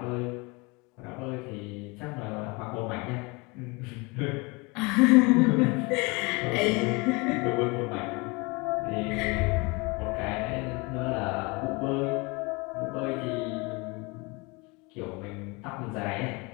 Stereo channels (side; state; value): right; quieter; 27.2 dB